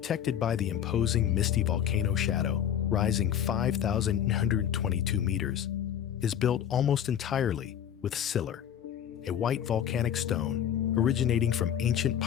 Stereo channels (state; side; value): quieter; right; 9.7 dB